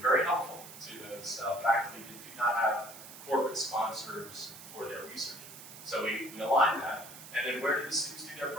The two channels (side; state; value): right; noise; hiss, 15 dB below the sound